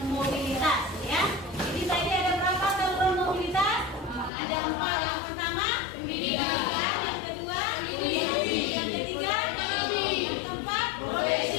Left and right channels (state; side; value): drops out; right; at 4.3 s